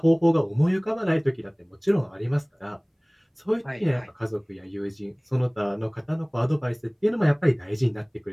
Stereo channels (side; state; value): both; identical; correlation 1.00